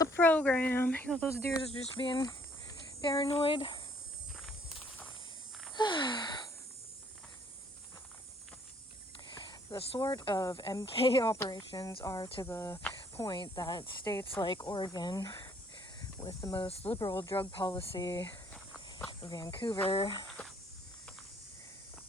program. You know, those deers are just being paranoid. The sort of MK operations are to the point that states like Oregon, with the most liberal drug policy, Vancouver,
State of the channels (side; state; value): both; normal; correlation 0.63